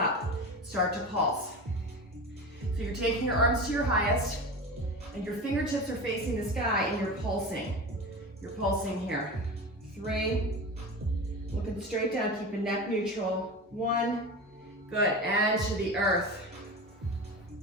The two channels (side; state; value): both; normal; correlation 0.28